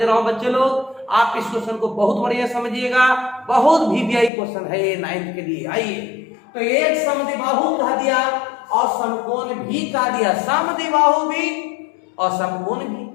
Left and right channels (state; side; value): drops out; right; at 4.3 s